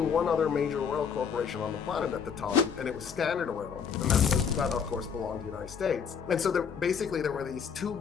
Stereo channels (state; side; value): quieter; right; 6.8 dB